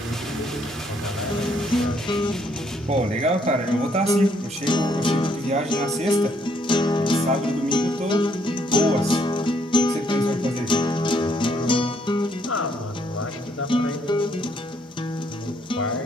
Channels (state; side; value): normal; both; correlation 0.70